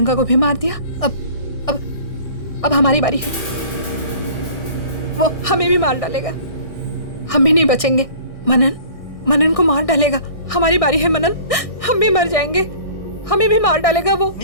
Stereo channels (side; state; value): right; late; 1.6 ms